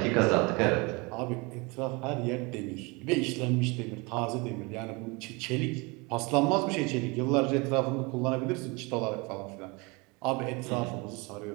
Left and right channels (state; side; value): quieter; left; 27.2 dB